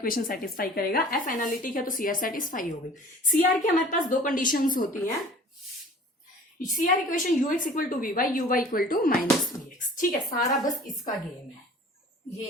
सेटिस्फाई करेगा। एफ एनालिटिक है तो सीआर सेटिस्फाई हो गई। सीआर की हमारे पास दो कंडीशंस होती हैं, CR equation U X equal to we Y, U Y equal to minus we x, ठीक है। सारा बस इसका गेम है, ये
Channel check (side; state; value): both; normal; correlation 0.46